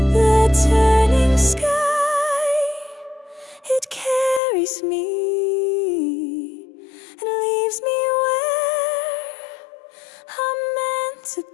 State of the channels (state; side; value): drops out; right; at 4.4 s